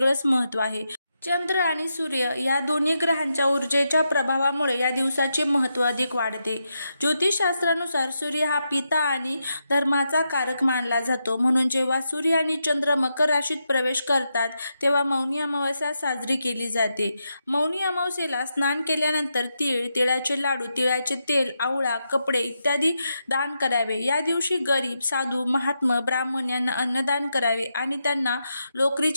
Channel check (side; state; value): both; inverted; correlation -0.85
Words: महत्त्व आहे. चंद्र आणि सूर्य या दोन्ही ग्रहांच्या ऊर्जेच्या प्रभावामुळे या दिवसाचे महत्त्व अधिक वाढते. ज्योतिषशास्त्रानुसार सूर्य हा पिता आणि धर्माचा कारक मानला जातो. म्हणून जेव्हा सूर्य आणि चंद्र मकर राशीत प्रवेश करतात तेव्हा मौनी अमावस्या साजरी केली जाते. मौनी अमावस्येला स्नान केल्यानंतर तीळ, तिळाचे लाडू, तिळाचे तेल, आवळा, कपडे इत्यादी दान करावे. या दिवशी गरीब, साधू, महात्मा, ब्राह्मण यांना अन्नदान करावे आणि त्यांना